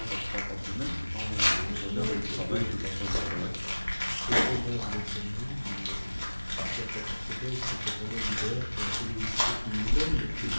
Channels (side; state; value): both; inverted; correlation -1.00